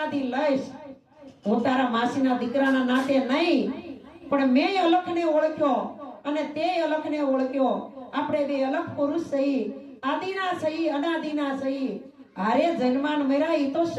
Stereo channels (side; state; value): both; identical; correlation 1.00